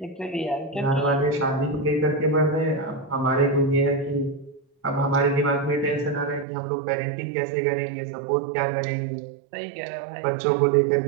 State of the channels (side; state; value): left; drops out; at 6.5 s